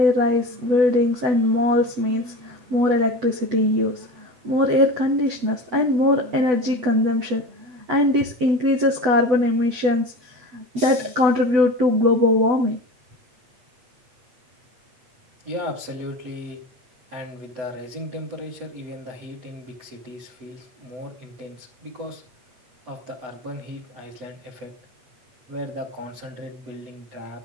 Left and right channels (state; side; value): late; left; 8.0 ms